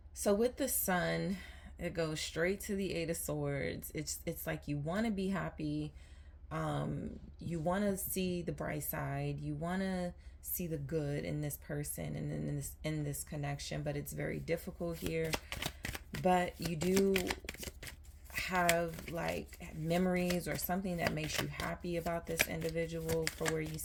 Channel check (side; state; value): both; identical; correlation 1.00